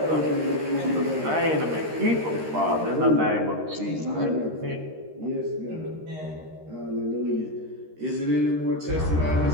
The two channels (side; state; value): left; late; 13 ms